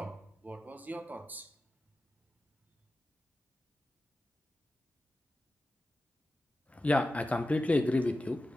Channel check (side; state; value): both; normal; correlation 0.93